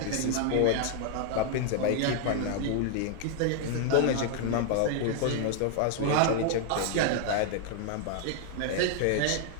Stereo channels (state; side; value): different; both; correlation 0.00